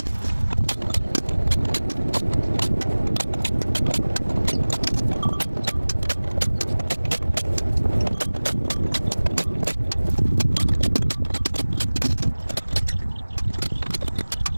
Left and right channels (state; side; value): inverted; both; correlation -1.00